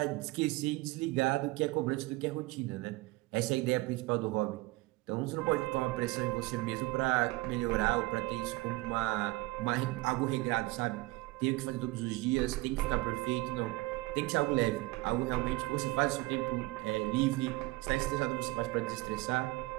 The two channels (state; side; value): quieter; left; 21.3 dB